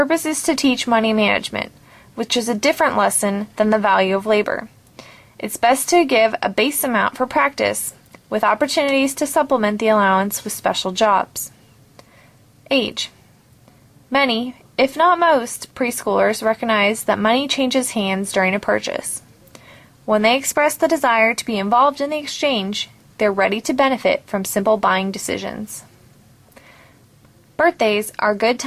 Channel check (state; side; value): identical; both; correlation 1.00